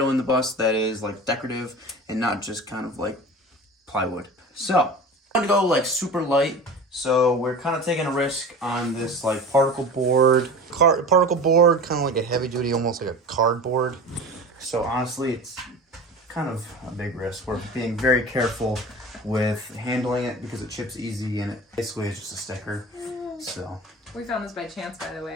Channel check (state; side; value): normal; both; correlation 0.34